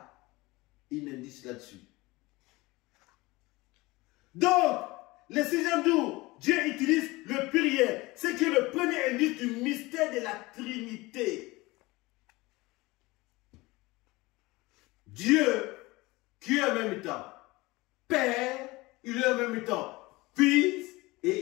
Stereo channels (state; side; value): quieter; right; 21.6 dB